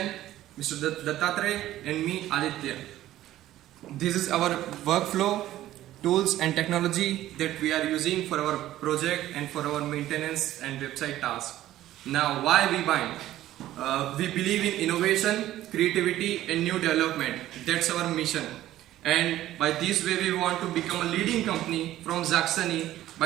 Mr. DATTATREYA and me, ADITYA. This is our workflow, tools and technology that we are using for our project and for our maintenance and website tasks. Now, why WEBIND? We believe in innovation, creativity and new development. That's our mission. And by this way we want to become a leading company from Saxony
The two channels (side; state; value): left; quieter; 14.1 dB